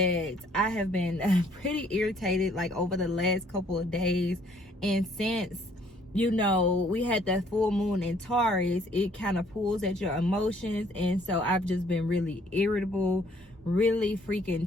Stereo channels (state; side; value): normal; both; correlation 0.62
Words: I have been pretty irritated like over the last couple of days, and since, you know, we had that full moon in Taurus, it kind of pulls at your emotions, and so I've just been really irritable, really